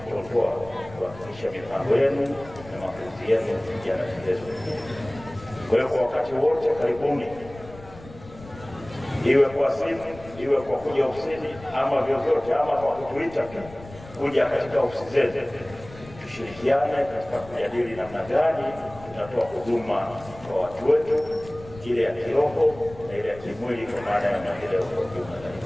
kuhakikisha mipango yenu na mapenzi yenu yanatekelezwa. Kwa hiyo kwa wakati wote karibuni, iwe kwa simu, iwe kwa kuja ofisini, ama vyovyote, ama kwa kutuita kuja katika ofisi zetu, tushirikiane katika kujadili namna gani tunatoa huduma kwa watu wetu, ile ya kiroho na ile ya kimwili, kwa maana ya maendeleo kwa ujumla.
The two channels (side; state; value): left; noise; rumble, 18 dB below the sound